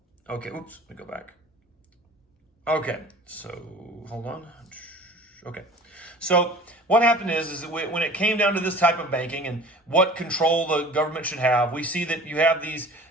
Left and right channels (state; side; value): normal; both; correlation 0.43